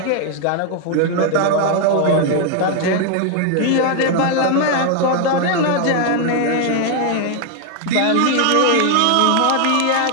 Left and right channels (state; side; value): different; both; correlation 0.01